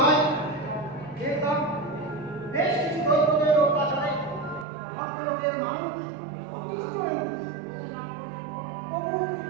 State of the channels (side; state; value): left; drops out; at 4.7 s